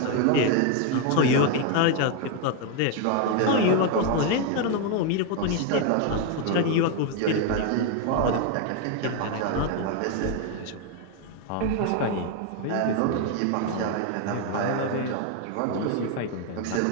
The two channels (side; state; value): both; different; correlation 0.01